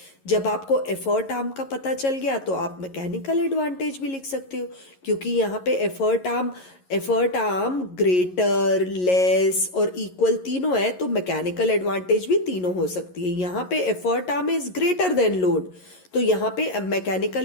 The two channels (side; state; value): right; late; 11 ms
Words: जब आपको एफर्ट आर्म का पता चल गया तो आप मैकेनिकल एडवांटेज भी लिख सकते हो, क्योंकि यहाँ पे एफर्ट आर्म ग्रेटर, लेस और इक्वल तीनों है, तो मैकेनिकल एडवांटेज भी तीनों हो सकती है. यहाँ पे effort arm is greater than load, तो यहाँ पे